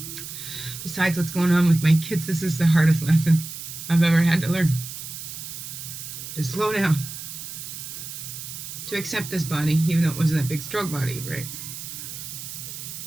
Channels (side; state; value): right; noise; hiss, 9 dB below the sound